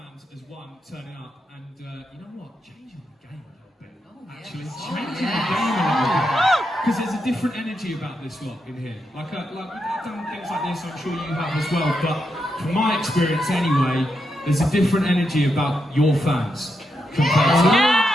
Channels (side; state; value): both; normal; correlation 0.84